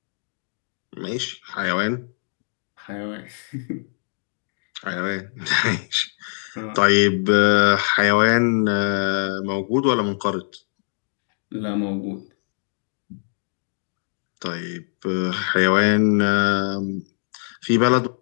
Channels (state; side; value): silent; right; digital silence